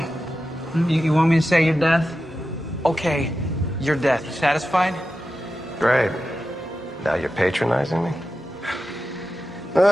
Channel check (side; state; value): both; normal; correlation 0.92